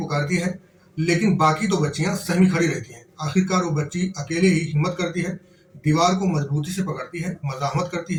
है, लेकिन बाकी 2 बच्चियां सहमी खड़ी रहती हैं। आखिरकार वो बच्ची अकेले ही हिम्मत करती है, दीवार को मजबूती से पकड़ती है, मजामत करती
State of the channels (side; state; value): both; identical; correlation 1.00